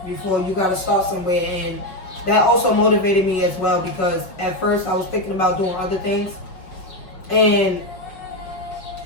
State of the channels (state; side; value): late; right; 5.1 ms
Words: before. You got to start somewhere, and that also motivated me as well, because at first I was thinking about doing other things, and